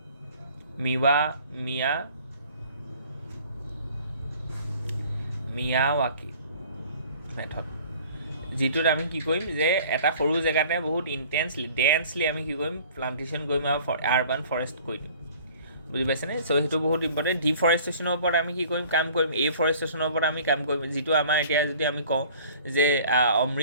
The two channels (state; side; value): inverted; both; correlation -0.50